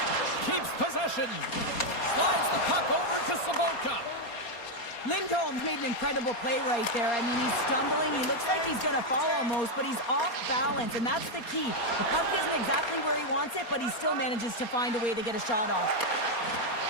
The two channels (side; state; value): right; late; 4.3 ms